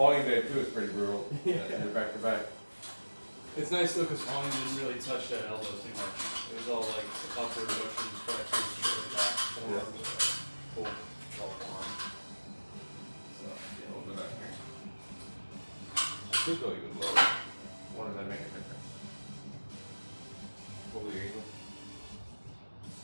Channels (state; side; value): inverted; both; correlation -1.00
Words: day too is pretty brutal. Yeah. You're back to back. It's nice though, because volume didn't really touch that elbow too much. It was all like upward motions, flexors, shit like that. Forearm, pull, all forearm. So, yeah, we'll do that here. I could go even lower. What does that make a difference? Pull the angle.